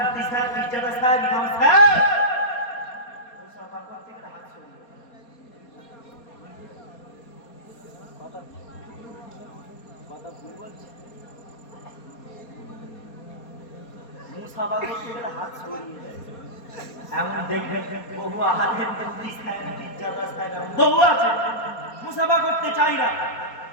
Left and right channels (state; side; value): late; right; 4.2 ms